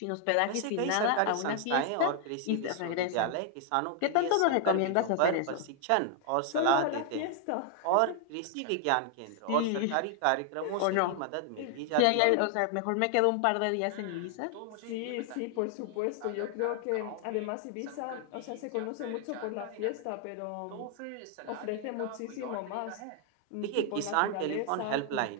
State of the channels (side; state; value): both; different; correlation 0.00